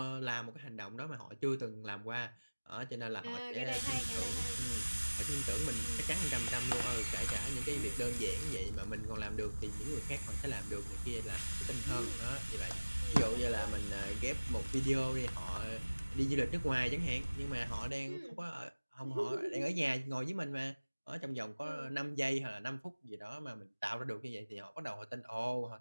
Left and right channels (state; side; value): inverted; both; correlation -1.00